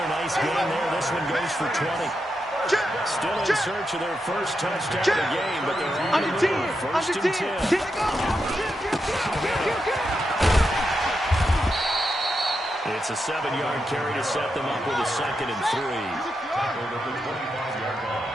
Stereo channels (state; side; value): normal; both; correlation 0.85